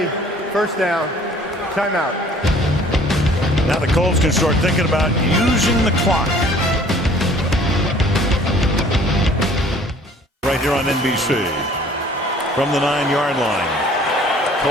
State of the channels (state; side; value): normal; both; correlation 0.54